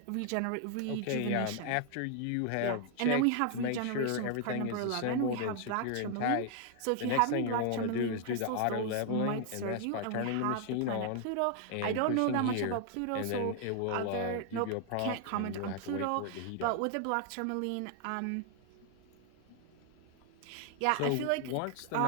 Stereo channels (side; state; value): both; different; correlation 0.00